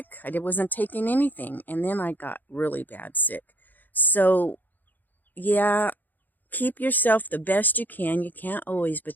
I wasn't taking anything, and then I got really bad sick. So, yeah, keep yourself the best you can. You can't always,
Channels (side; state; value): right; late; 0.086 ms